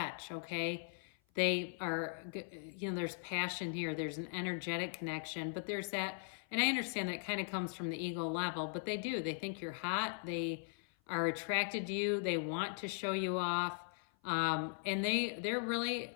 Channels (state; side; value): silent; right; 52 dB below the other